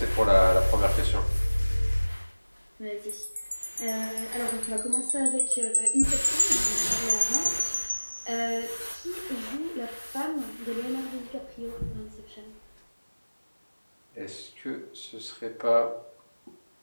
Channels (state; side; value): inverted; both; correlation -1.00